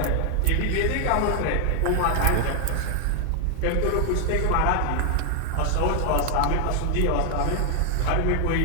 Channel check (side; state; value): both; different; correlation 0.00